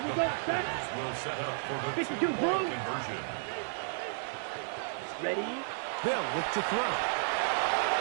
we go, set. Will set up for the 52 2-point conversion. Ready. They'll look to throw.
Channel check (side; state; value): left; silent; digital silence